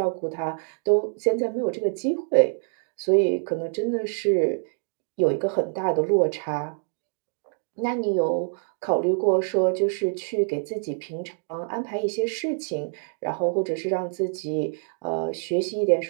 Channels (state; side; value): silent; left; 61 dB below the other